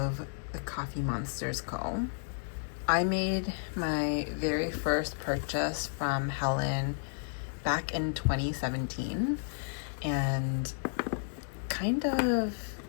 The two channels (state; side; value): silent; right; digital silence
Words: the Coffee Monsters Co. I made my very first purchase from Helen back in 2017 and kind of,